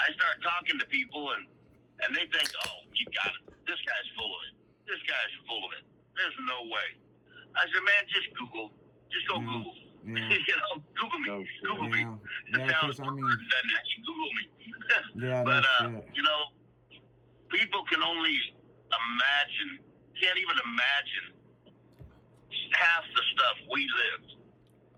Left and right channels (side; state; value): both; identical; correlation 1.00